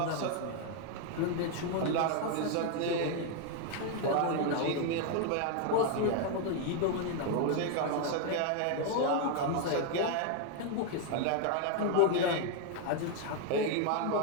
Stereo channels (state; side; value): different; both; correlation 0.01